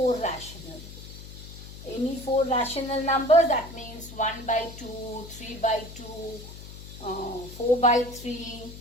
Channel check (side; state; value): left; noise; hum, 14 dB below the sound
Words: rational. Any 4 rational numbers, that means 1 by 2, 3 by 2, 4 by 3,